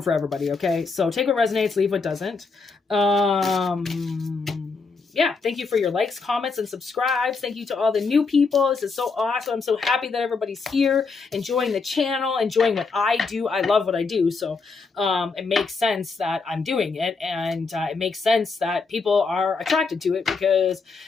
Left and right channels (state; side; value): quieter; right; 4.5 dB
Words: for everybody, okay? So take what resonates, leave what doesn't. Yeah, thank you for your likes, comments, and subscribes. Thank you to all the new people. This is so awesome. I'm so happy that everybody's here, enjoying the channel, enjoying what I do. I love what I do, so it makes sense that I'm doing it, and it makes sense that people are attracted to it because